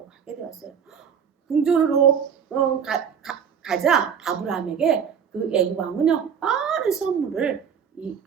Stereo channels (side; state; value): left; quieter; 7.5 dB